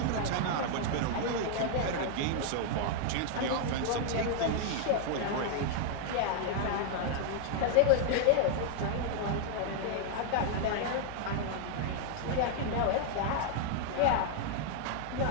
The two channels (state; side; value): different; both; correlation 0.00